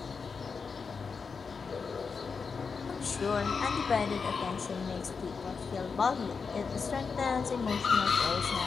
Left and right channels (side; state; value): right; quieter; 5.3 dB